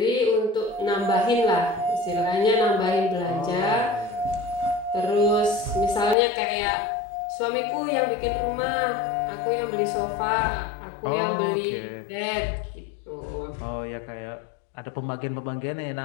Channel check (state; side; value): drops out; right; at 6.2 s